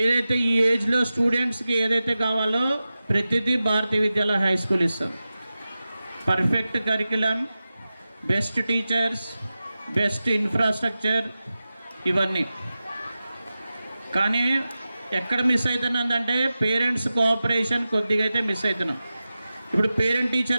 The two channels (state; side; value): inverted; both; correlation -0.94